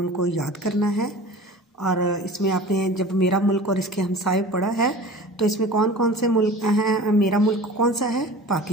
याद करना है। और इसमें आपने जब मेरा मुल्क और इसके हमसाए पढ़ा है तो इसमें कौन कौन से मुल्क हैं? मेरा मुल्क कौन सा है?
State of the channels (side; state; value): both; normal; correlation 0.39